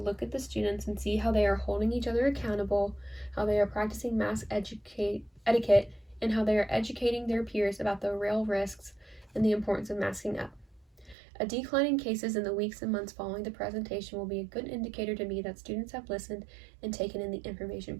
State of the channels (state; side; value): drops out; left; at 11.2 s